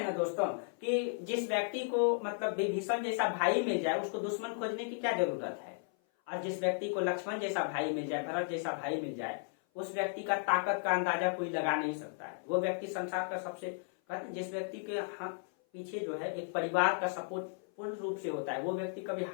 ना दोस्तों कि जिस व्यक्ति को मतलब विभीषण जैसा भाई मिल जाए उसको दुश्मन खोजने की क्या जरूरत है, और जिस व्यक्ति को लक्ष्मण जैसा भाई मिल जाए, भरत जैसा भाई मिल जाए, उस व्यक्ति का ताकत का अंदाजा कोई लगा नहीं सकता है। वो व्यक्ति संसार का सबसे, कहते हैं जिस व्यक्ति के हाथ पीछे जो है एक परिवार का सपोर्ट पूर्ण रूप से होता है, वो व्यक्ति कभी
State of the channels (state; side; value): silent; right; 55 dB below the other